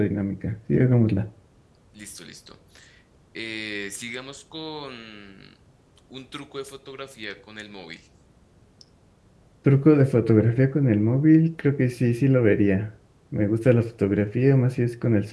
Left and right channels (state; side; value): identical; both; correlation 1.00